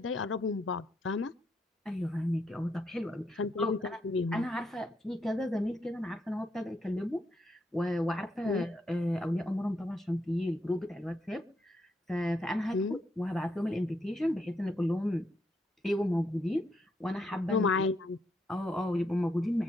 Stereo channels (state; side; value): normal; both; correlation 0.78